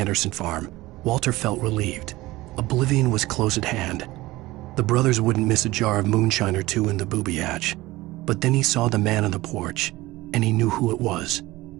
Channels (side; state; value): left; quieter; 19.0 dB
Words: farm, Walter felt relieved. Oblivion was close at hand. The brothers wouldn't miss a jar of moonshine or two in the booby hatch. But then he saw the man on the porch, and he knew who it was.